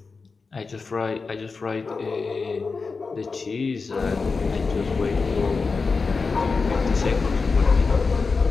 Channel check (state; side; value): quieter; right; 4.5 dB